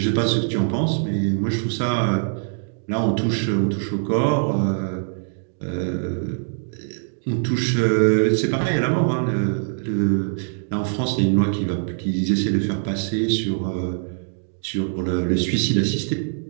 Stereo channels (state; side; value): silent; left; digital silence